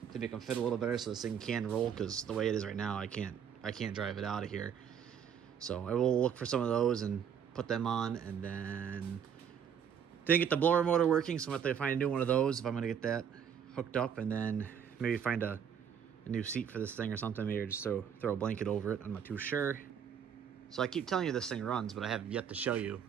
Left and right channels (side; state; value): left; quieter; 8.0 dB